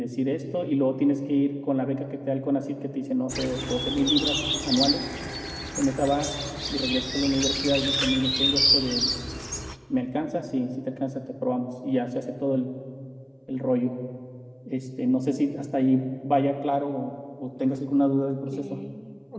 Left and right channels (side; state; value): both; identical; correlation 1.00